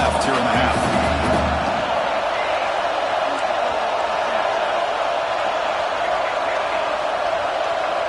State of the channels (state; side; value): identical; both; correlation 1.00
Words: here in the half.